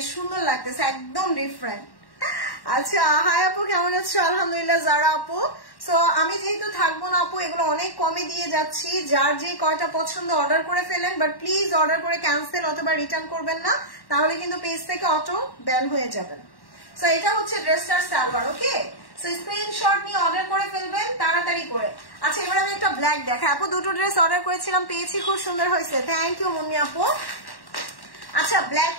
সুন্দর লাগতেছে, একদম ডিফারেন্ট। আচ্ছা, হাই আপু, কেমন আছো? আলহামদুলিল্লাহ যারা আপু। সো আমি যেহেতু থাকবো না আপু, এগুলো অনেক কমে দিয়ে যাচ্ছি। যার যে কয়টা পছন্দ অর্ডার করে ফেলেন, বাট প্লিজ অর্ডার করে ক্যান্সেল অথবা রিটার্ন করবেন না, তাহলে কিন্তু পেজ থেকে অটো ব্যান হয়ে যাবেন। সো এটা হচ্ছে ড্রেসটার সালোয়ার। ওকে, সো স্ক্রিনশট নিয়ে অর্ডার করে ফেলবেন তাড়াতাড়ি করে। আচ্ছা, এবার আমি একটা ব্ল্যাক দেখাই আপু। দুটো ড্রেস অর্ডার করেছিলাম, পেয়েছি, খুব সুন্দর হয়েছে, থ্যাংক ইউ মুন্নি আপু। আচ্ছা, ব্ল্যাক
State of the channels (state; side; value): late; right; 1.1 ms